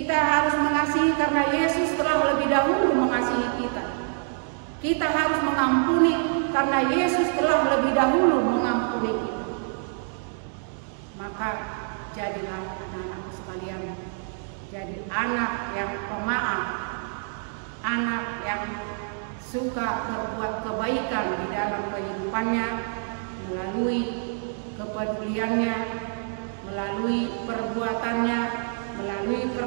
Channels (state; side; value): silent; left; 61 dB below the other